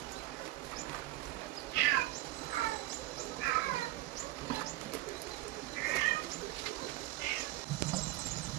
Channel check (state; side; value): quieter; left; 16.7 dB